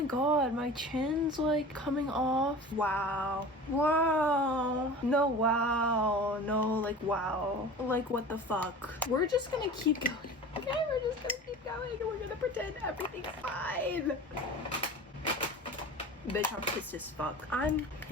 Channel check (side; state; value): both; normal; correlation 0.37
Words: god, my chin's like coming off. Wow. No, wow. No, like, wow. Like, what the fuck? We're just gonna keep going. Okay, we're just gonna keep going and we're gonna pretend everything's fine. Bitch, I'm pissed as fuck. I'm